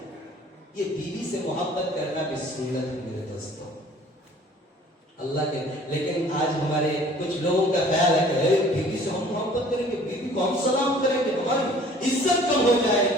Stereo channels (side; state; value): both; normal; correlation 0.52